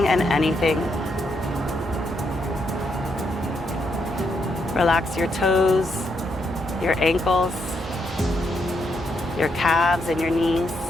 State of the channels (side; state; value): both; normal; correlation 0.78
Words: and anything. Relax your toes, your ankles, your calves and your knees.